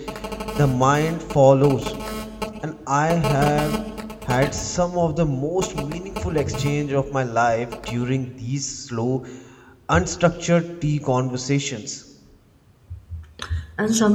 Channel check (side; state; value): both; identical; correlation 1.00